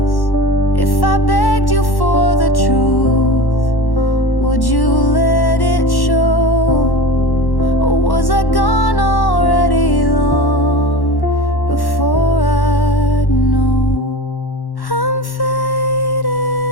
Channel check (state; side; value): late; right; 1.1 ms